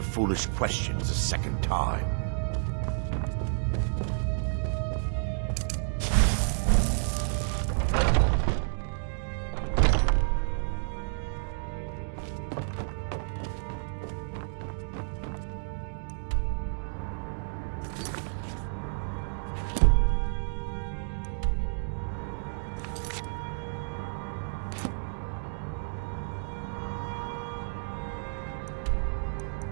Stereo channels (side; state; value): left; silent; digital silence